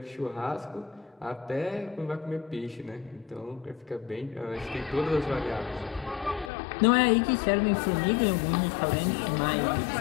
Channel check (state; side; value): drops out; right; at 6.5 s